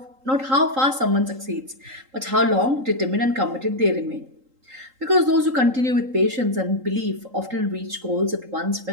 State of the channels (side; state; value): left; late; 3.8 ms